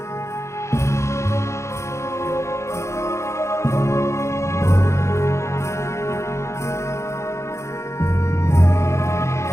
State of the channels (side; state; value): right; late; 0.14 ms